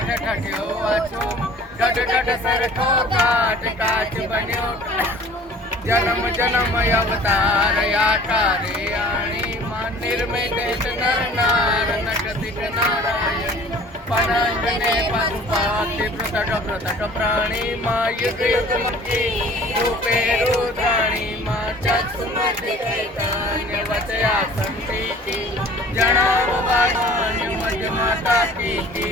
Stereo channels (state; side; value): normal; both; correlation 0.48